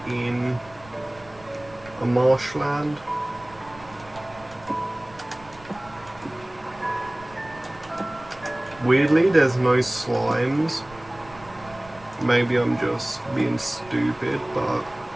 in a marshland. Weirdly, there's no slimes. Maybe I'm just being stupid, but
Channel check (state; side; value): noise; right; rumble, 22 dB below the sound